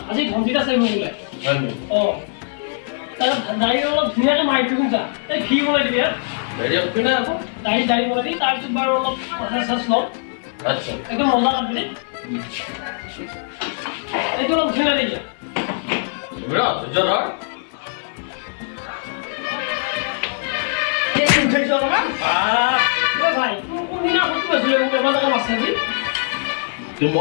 আজি ঘণ্টিটা চাইব বোলে দাড়ি অলপ ধুনীয়াকৈ মাৰি দিম যা এই ফি বনাই দিবি দাড়ি বনাই দি তাৰপিছত বাৰু অলপ মাছাজ চাছ ল'ম আচ্ছা একদম মজা লাগবে ৰে এইটো অলপ ধুনীয়া দেই ভাই কোনদিনা কৈছিলে মোক এবাৰ টকা মাছ চাবি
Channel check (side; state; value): right; silent; 63 dB below the other